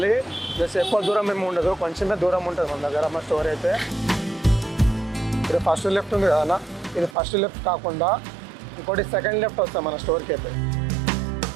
జస్ట్ ఎక్కువ దూరం ఏమి ఉండదు, కొంచెమే దూరం ఉంటుంది మన దగ్గర మా స్టోర్ అయితే. ఇది ఫస్ట్ లెఫ్ట్ ఉంది కదన్నా, ఇది ఫస్ట్ లెఫ్ట్ కాకుండా ఇంకోటి సెకండ్ లెఫ్ట్ వస్తాం మన స్టోర్కి అయితే.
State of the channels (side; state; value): left; drops out; at 7.2 s